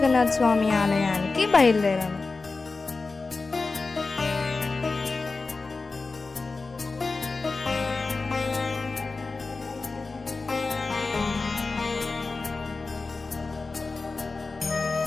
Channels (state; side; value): quieter; right; 3.9 dB